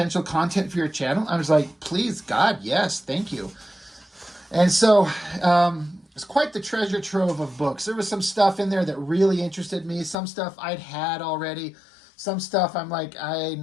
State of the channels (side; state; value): right; drops out; at 10.2 s